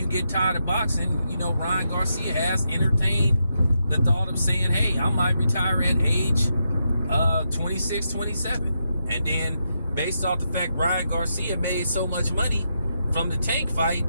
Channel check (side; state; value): both; inverted; correlation -0.84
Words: get tired of boxing. You know, Ryan Garcia has entertained the thought of saying, hey, I might retire at age 26, 27. And then based off the fact Ryan Garcia made so much money from the Tank fight,